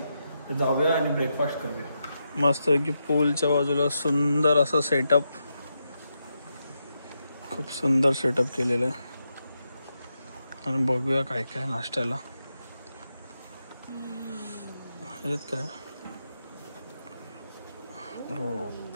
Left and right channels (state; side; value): inverted; both; correlation -0.85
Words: तर जाऊया आणि ब्रेकफास्ट करूया. मस्त की पूलच्या बाजूला सुंदर असं सेटअप, खूप सुंदर सेटअप केलेलं आहे. आणि बघूया काय काय नाश्त्याला आहेत काय. हो,